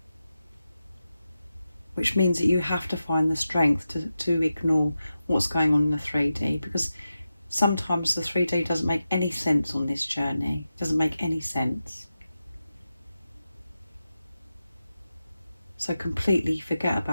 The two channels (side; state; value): both; inverted; correlation -0.91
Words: which means that you have to find the strength to ignore what's going on in the 3D, because sometimes the 3D doesn't make any sense on this journey. It doesn't make any sense. So completely forget